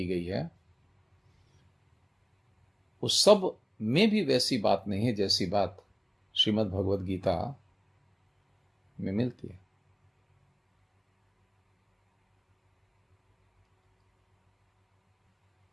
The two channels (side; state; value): both; identical; correlation 1.00